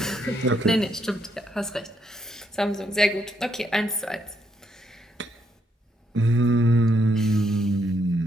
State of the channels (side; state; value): both; normal; correlation 0.75